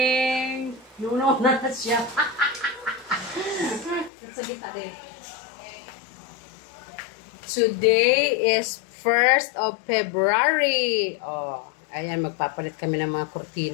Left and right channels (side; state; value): right; drops out; at 4.1 s